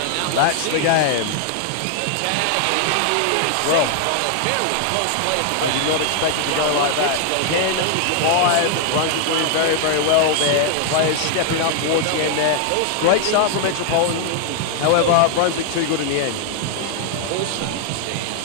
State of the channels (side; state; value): both; different; correlation 0.00